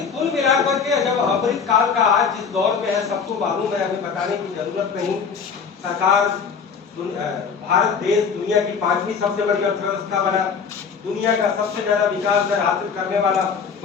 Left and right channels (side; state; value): right; quieter; 6.0 dB